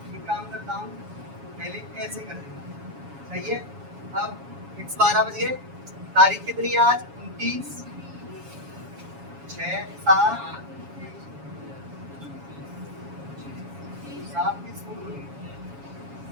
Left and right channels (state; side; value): late; left; 7.2 ms